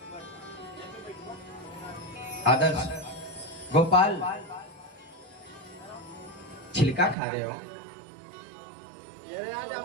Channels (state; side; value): drops out; left; at 7.2 s